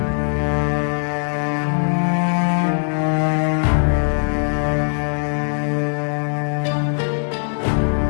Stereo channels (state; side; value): silent; right; 62 dB below the other